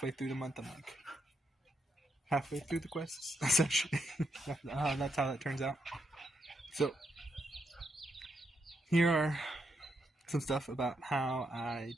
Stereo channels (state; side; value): normal; both; correlation 0.80